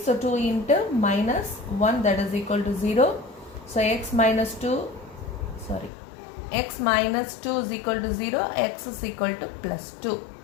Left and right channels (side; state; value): right; drops out; at 5.9 s